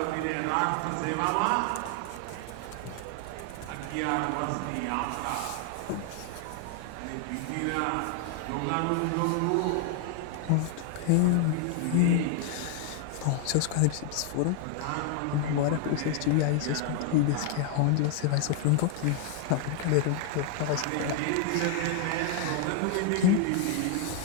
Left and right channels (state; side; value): different; both; correlation 0.00